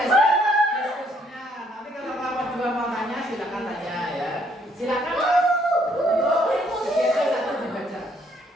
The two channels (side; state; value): both; normal; correlation 0.67